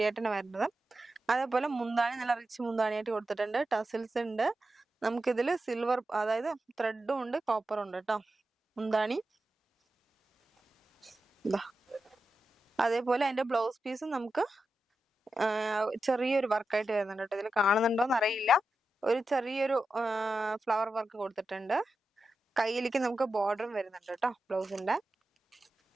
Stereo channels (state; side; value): normal; both; correlation 0.90